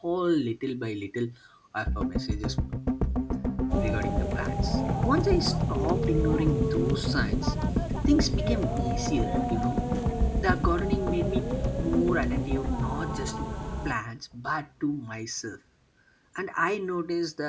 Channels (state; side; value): identical; both; correlation 1.00